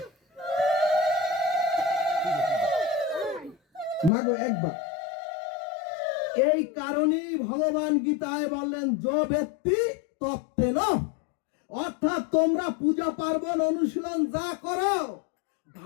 মাগো একবার। এই কারণেই ভগবান গীতায় বললেন, যো ব্যক্তি তত্ত্বেন, অর্থাৎ তোমরা পূজা পার্বণ অনুশীলন যা করো,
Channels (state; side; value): drops out; right; at 4.1 s